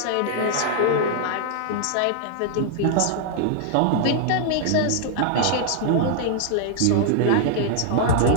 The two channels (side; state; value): both; different; correlation 0.00